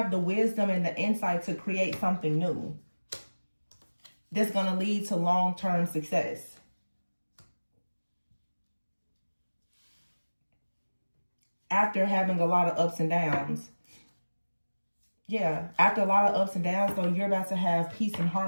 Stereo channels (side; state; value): both; inverted; correlation -1.00